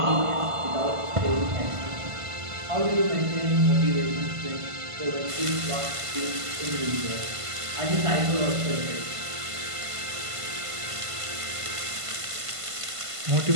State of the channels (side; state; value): left; late; 1.5 ms